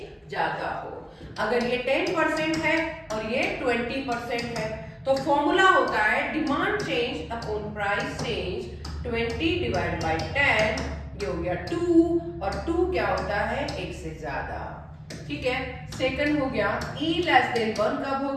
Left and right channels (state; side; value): identical; both; correlation 1.00